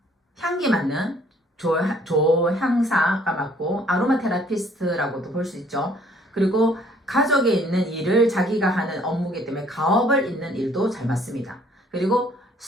향기 맡는 조향사가 맞고 아로마 테라피스트라고도 볼 수 있죠. 그리고 가족에 있는 일을 자기가 하는 업무이기 때문에 가업을 잇는 일도 잘 맞습니다. 그리고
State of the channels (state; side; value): normal; both; correlation 0.60